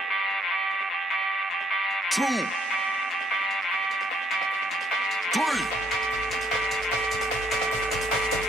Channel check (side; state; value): both; normal; correlation 0.69